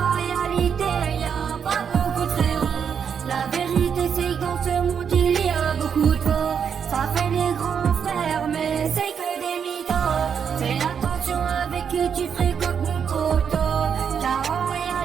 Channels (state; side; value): quieter; left; 7.3 dB